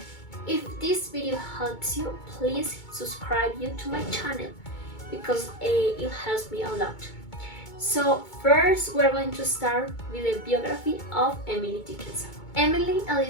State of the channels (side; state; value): right; late; 2.2 ms